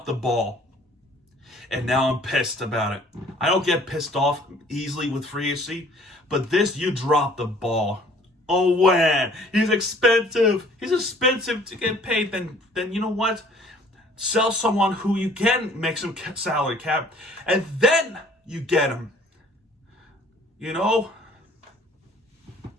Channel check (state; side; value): normal; both; correlation 0.55